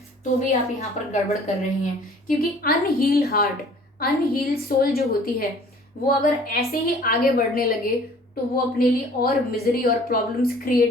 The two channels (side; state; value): both; normal; correlation 0.52